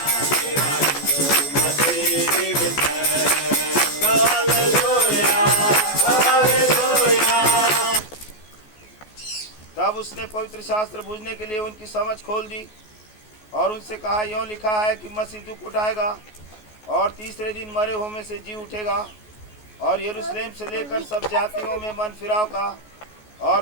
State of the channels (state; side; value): late; right; 14 ms